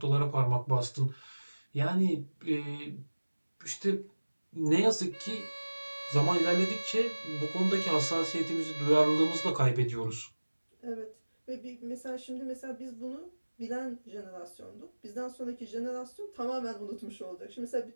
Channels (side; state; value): both; inverted; correlation -1.00